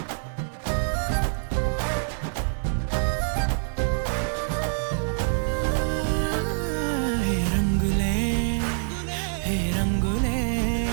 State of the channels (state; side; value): silent; left; 59 dB below the other